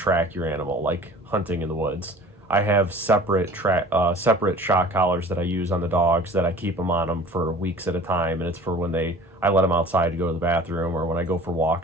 your animal, like hunting in the woods. I have separate shock collars that I use on the dogs that I keep them on them for weeks at a time, and it's for when I let them outside to go to the bathroom, or when I go for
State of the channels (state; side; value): normal; both; correlation 0.44